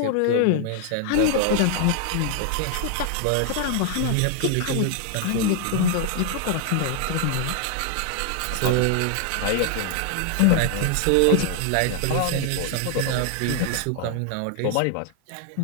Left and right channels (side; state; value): both; different; correlation 0.00